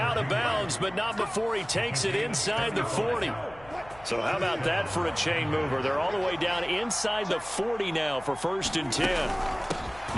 of bounds, but not before he takes it inside the 40. So how about that for a chain mover? They're all the way down inside the 40 now for 1st and 10.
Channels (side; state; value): left; noise; hum, 22 dB below the sound